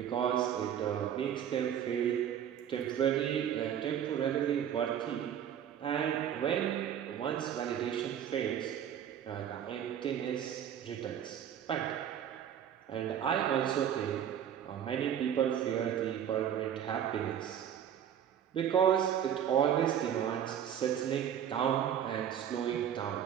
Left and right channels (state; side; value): quieter; left; 9.5 dB